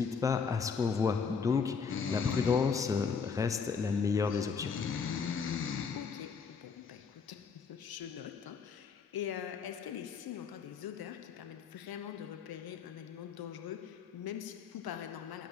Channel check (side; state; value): right; quieter; 5.7 dB